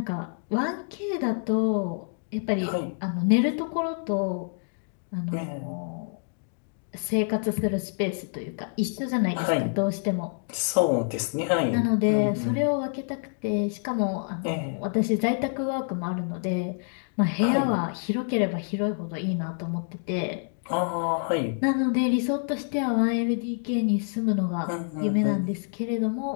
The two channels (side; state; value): right; silent; 60 dB below the other